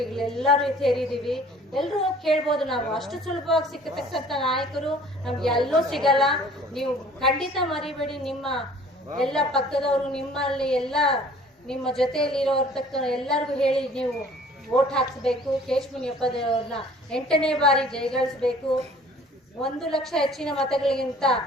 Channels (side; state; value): both; normal; correlation 0.51